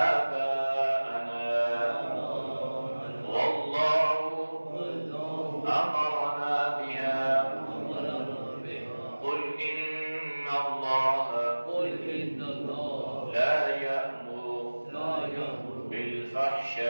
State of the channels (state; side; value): inverted; both; correlation -1.00